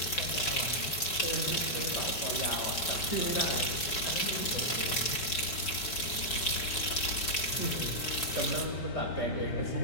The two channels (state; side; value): late; right; 4.7 ms